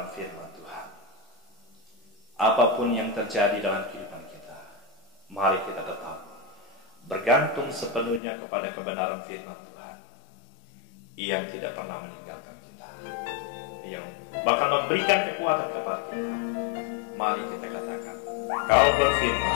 firman Tuhan. Apapun yang terjadi dalam kehidupan kita, mari kita tetap bergantung sepenuhnya kepada kebenaran firman Tuhan yang tidak pernah meninggalkan kita, yang bahkan memberikan kekuatan kepada kita. Mari kita katakan, Kau berfirman,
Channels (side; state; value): right; drops out; at 8.2 s